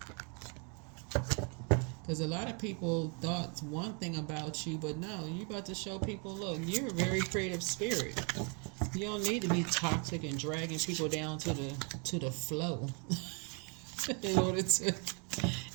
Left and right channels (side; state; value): left; quieter; 35.7 dB